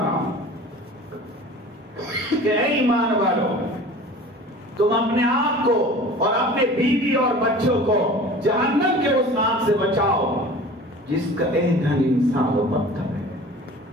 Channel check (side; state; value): both; normal; correlation 0.41